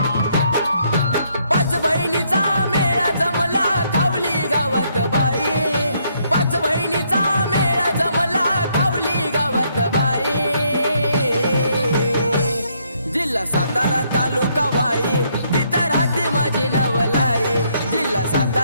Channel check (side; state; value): both; inverted; correlation -0.71